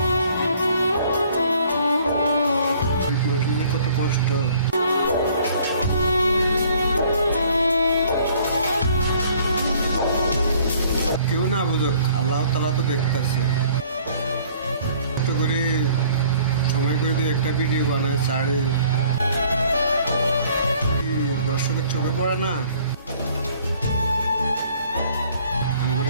মানুষের কত কষ্ট, কেউ না বুঝুক, আল্লাহ তাআলা তো দেখতেছে। কষ্ট করে সময় করে দিয়ে একটা ভিডিও বানায় ছাড়ে, দর্শকের চোখে পড়ে না?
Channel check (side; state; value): both; inverted; correlation -0.57